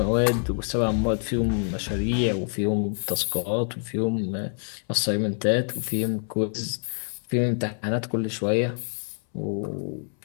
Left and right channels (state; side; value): silent; right; 61 dB below the other